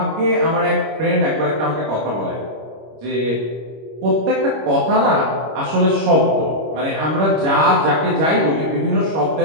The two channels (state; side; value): late; left; 26 ms